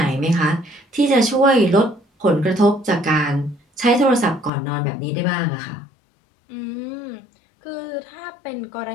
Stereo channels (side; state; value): right; drops out; at 4.5 s